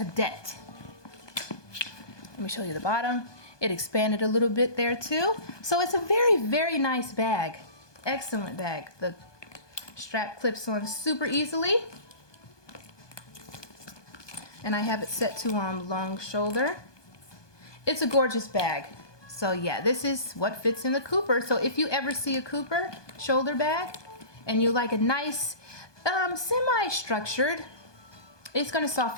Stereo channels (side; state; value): right; late; 1.2 ms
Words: Let me show you the bottom. It expanded a little bit there too. So it's a very, very nice bag. Excellent bag. The strap clips on super easily. And I have it set to long shoulder. It's a gorgeous bag. So yeah, this is what fits in the Cooper. So if you ever see a Cooper shoulder bag and you like a nice semi-structured, it's going to